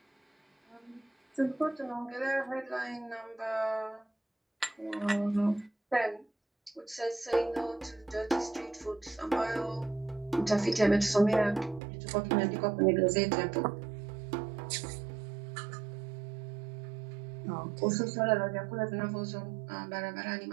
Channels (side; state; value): left; drops out; at 11.8 s